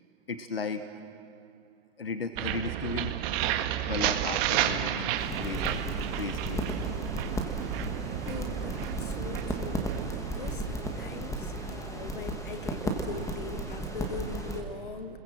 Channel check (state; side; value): quieter; left; 3.9 dB